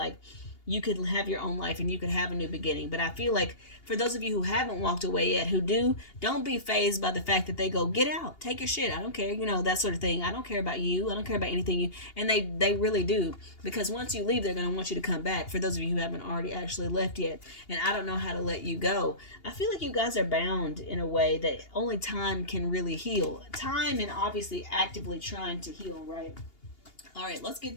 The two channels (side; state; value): right; late; 2.8 ms